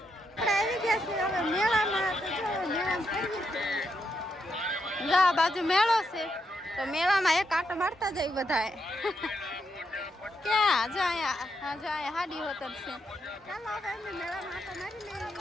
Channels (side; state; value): both; normal; correlation 0.81